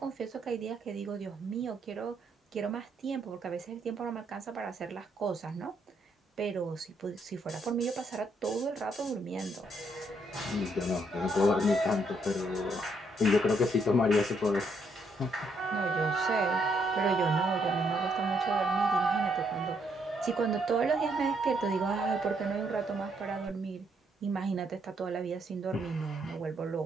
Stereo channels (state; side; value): normal; both; correlation 0.73